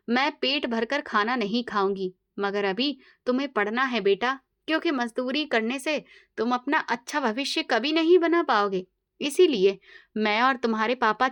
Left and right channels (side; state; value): both; identical; correlation 1.00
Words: मैं पेट भरकर खाना नहीं खाऊंगी। मगर अभी तुम्हें पढ़ना है बेटा, क्योंकि मजदूरी करने से तुम अपना अच्छा भविष्य कभी नहीं बना पाओगे। इसीलिए मैं और तुम्हारे पापा